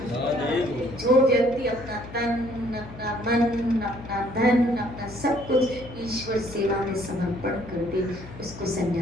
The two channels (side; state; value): left; noise; hum, 15 dB below the sound